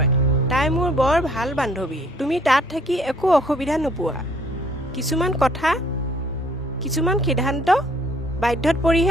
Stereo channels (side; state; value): both; normal; correlation 0.61